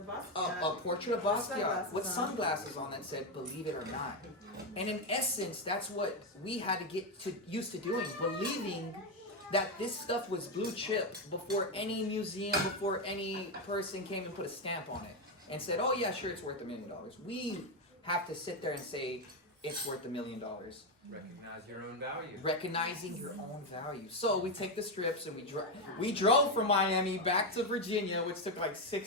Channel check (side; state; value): both; normal; correlation 0.07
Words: Basquiat. A portrait of Basquiat with sunglasses on that said, "Believe it or not." And in essence, that's what we had to get used to doing, believing that this stuff was blue chip before any museum, before any person came and put a stamp on it and said, "Oh yeah, sure, it's worth $1 million." We have to sit there and say, it's worth $1 million. Recognize your own value. Recognizing your own value. So we take the strips and we drove from Miami back to Virginia, which took